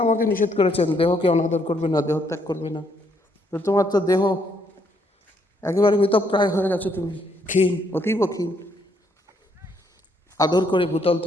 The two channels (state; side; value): normal; both; correlation 0.72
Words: আমাকে নিষেধ করেছেন দেহকে অনাদর করবে না, দেহত্যাগ করবে না। তো তোমার তো দেহ একেবারে মৃতপ্রায় হয়ে গেছে, তুমি ক্ষীণ, অতীব ক্ষীণ। আদর করে ভূতল